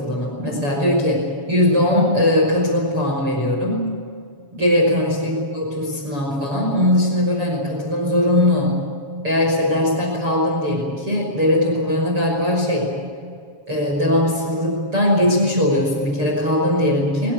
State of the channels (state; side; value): late; left; 7.2 ms